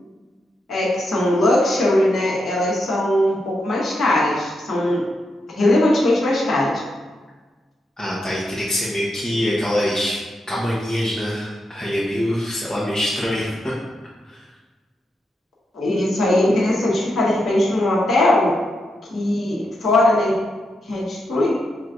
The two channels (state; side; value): normal; both; correlation 0.84